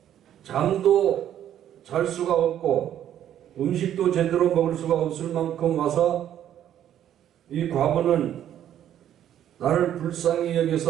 잠도 잘 수가 없고 음식도 제대로 먹을 수가 없을 만큼 와서 이 과부는 나를 불쌍히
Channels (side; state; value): left; quieter; 10.8 dB